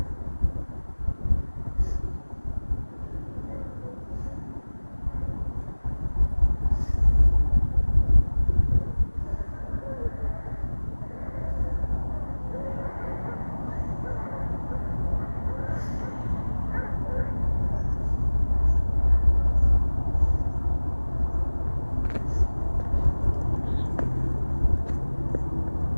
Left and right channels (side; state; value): both; inverted; correlation -1.00